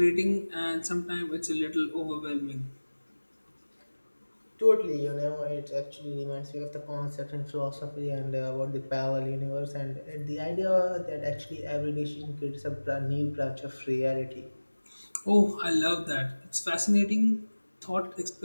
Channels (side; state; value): both; inverted; correlation -1.00